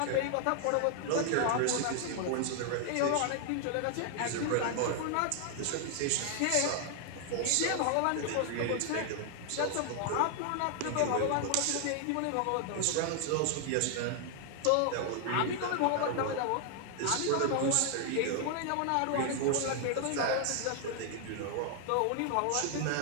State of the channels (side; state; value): both; different; correlation 0.00